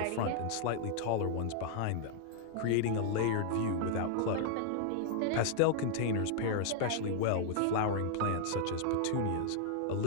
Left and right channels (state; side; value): different; both; correlation -0.01